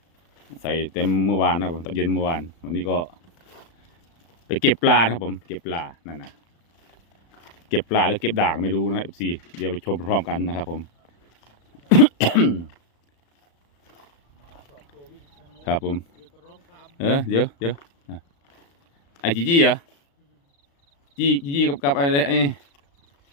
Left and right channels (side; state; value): right; late; 36 ms